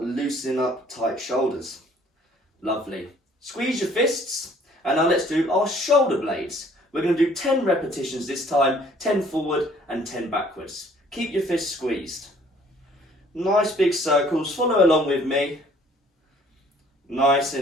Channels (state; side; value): normal; both; correlation 0.58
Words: loosening up tight shoulders. Lovely. Squeeze your fists, and now let's do our shoulder blades. We're going to do 10 repetitions this time, 10 forward and 10 backwards. Keep your fists squeezed. Nice big circles, follow along with me. Nice